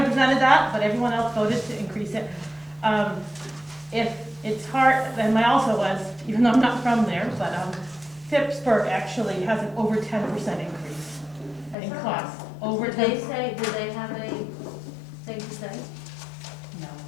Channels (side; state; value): right; drops out; at 11.8 s